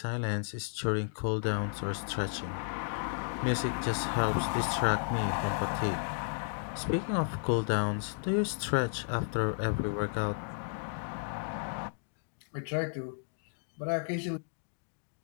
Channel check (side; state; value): right; silent; digital silence